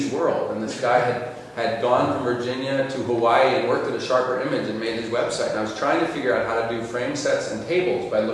World, and this guy had gone from Virginia to Hawaii and worked at a Sharper Image and made his website. And I was trying to figure out how to do frame sets and tables by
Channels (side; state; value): both; identical; correlation 1.00